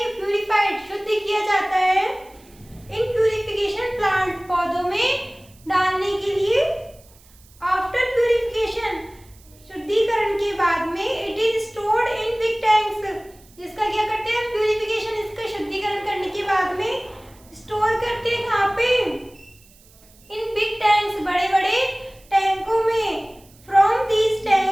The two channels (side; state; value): right; noise; hiss, 27 dB below the sound